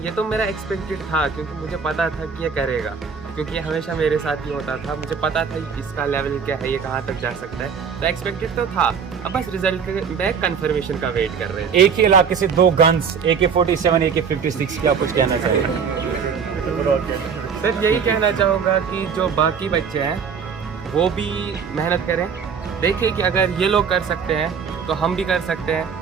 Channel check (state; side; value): quieter; left; 6.4 dB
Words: तो मेरा एक्सपेक्टेड था क्योंकि मुझे पता था कि ये करेगा, क्योंकि ये हमेशा मेरे साथ ही होता था। मुझे पता था कि इसका लेवल क्या है, ये कहाँ तक जा सकता है, तो एक्सपेक्टेड तो था। अब बस रिजल्ट में कंफर्मेशन का वेट कर रहे हैं। एक ही इलाके से दो गन्स AK-47 AK-56 क्या कुछ कहना चाहिए? सर यही कहना चाहूँगा कि जो बाकी बच्चे हैं वो भी मेहनत करें, देखिए कि अगर ये लोग कर सकते हैं तो हम भी कर सकते हैं।